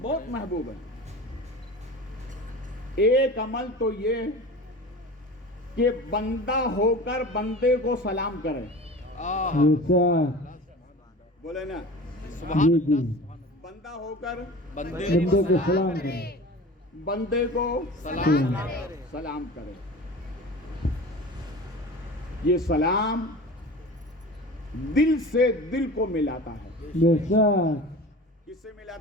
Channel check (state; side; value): normal; both; correlation 0.36